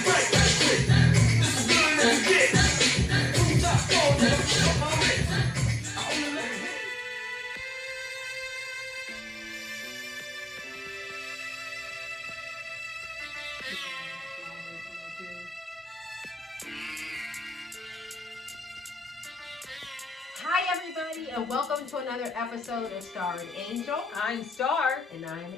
everybody, and welcome to another episode of Star and Angel. I'm Star. And I'm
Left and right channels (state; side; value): normal; both; correlation 0.95